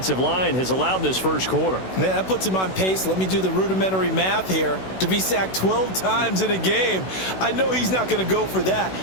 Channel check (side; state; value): right; late; 16 ms